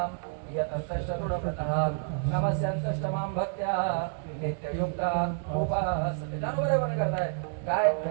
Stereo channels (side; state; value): left; silent; digital silence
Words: यतंतश्चतुरतः नमस्यन्तष्टमां भक्त्या नित्ययुक्ता उपासते. त्यानुसार वर्णन करताय काय